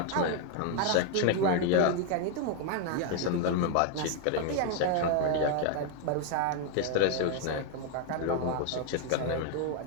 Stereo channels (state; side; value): different; both; correlation 0.01